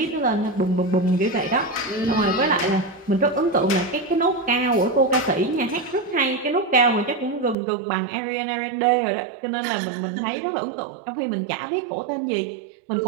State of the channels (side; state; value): left; drops out; at 7.6 s